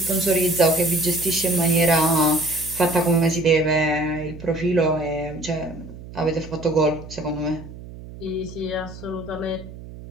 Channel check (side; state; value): right; noise; hum, 15 dB below the sound